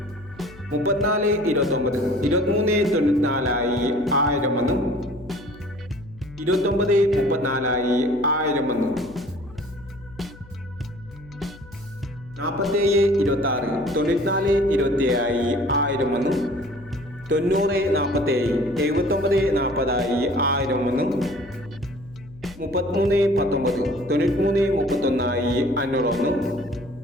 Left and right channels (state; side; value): noise; left; hum, 21 dB below the sound